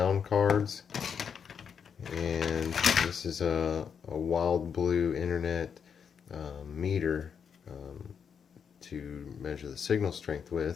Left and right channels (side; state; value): right; quieter; 7.0 dB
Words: cards, and this is a wild blue internet meter to measure the signal strength